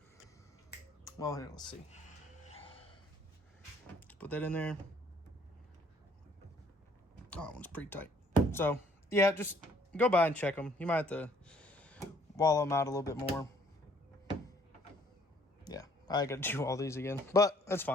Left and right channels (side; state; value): both; normal; correlation 0.61